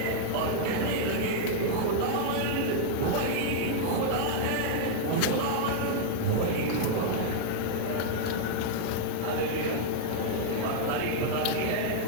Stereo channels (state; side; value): different; both; correlation -0.01